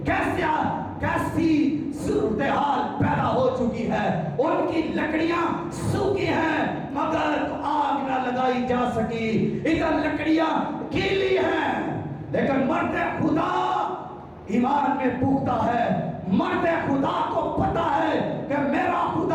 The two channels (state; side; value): identical; both; correlation 1.00